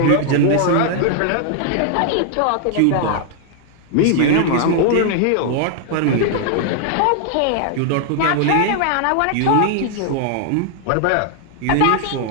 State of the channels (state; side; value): different; both; correlation 0.00